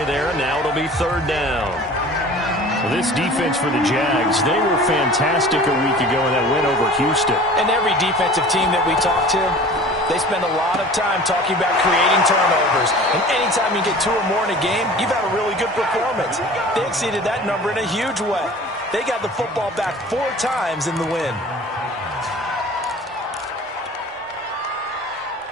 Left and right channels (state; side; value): normal; both; correlation 0.43